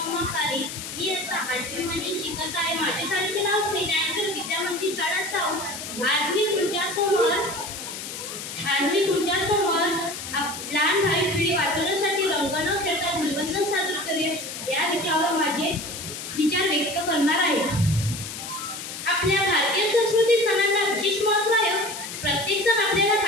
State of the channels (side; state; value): left; noise; hiss, 8 dB below the sound